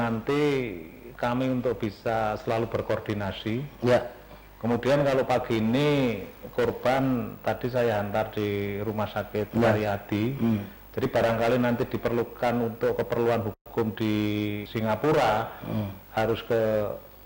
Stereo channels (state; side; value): identical; both; correlation 1.00